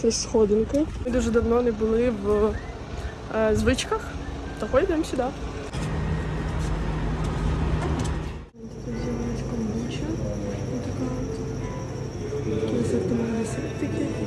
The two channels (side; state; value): both; identical; correlation 1.00